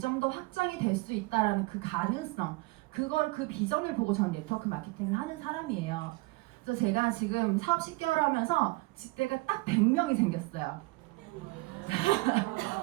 더 확장이 될 수 있다라는 그 가능성, 그 비전을 보고 저는 네트워크 마케팅을 하는 사람이에요. 그래서 제가 지금 사업 10개월 하면서 직대가 딱 100명이 생겼어요.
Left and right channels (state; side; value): quieter; left; 23.3 dB